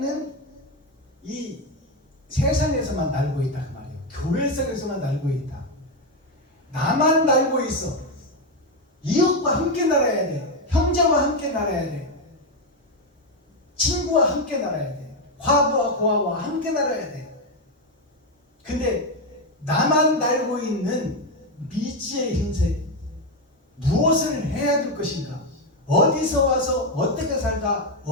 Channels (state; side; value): normal; both; correlation 0.08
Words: 이 세상에서만 날고 있다 그 말이에요. 교회 속에서만 날고 있다. 나만 날고 있어. 이웃과 함께 날아야 돼. 형제와 함께 날아야 돼. 친구와 함께 날아야 돼. 과부와 고아와 함께 날아야 돼. 근데 나만 날고 있는 미지의 흰색, 무엇을 해야 될 것인가, 어디서 와서 어떻게 살다